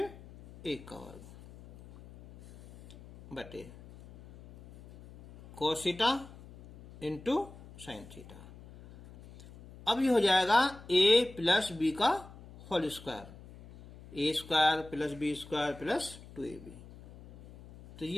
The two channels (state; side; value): noise; left; hum, 19 dB below the sound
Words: 1 का वर्ग बटे cos theta into sine theta. अब ये हो जाएगा a प्लस बी का whole square, A square plus B square plus 2ab। तो